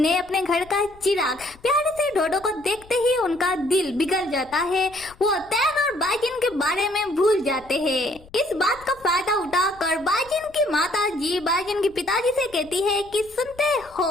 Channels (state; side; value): noise; left; rumble, 24 dB below the sound